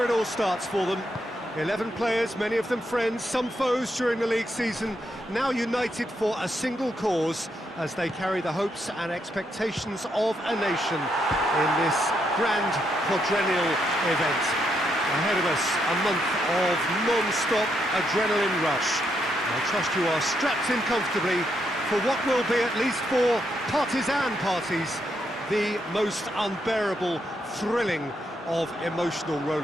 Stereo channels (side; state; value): both; normal; correlation 0.79